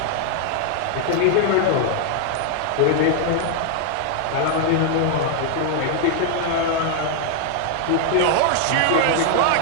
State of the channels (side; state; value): both; different; correlation 0.00